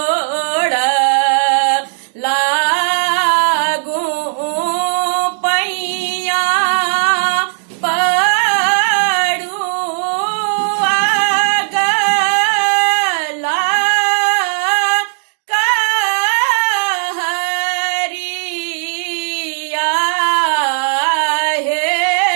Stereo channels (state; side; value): silent; left; digital silence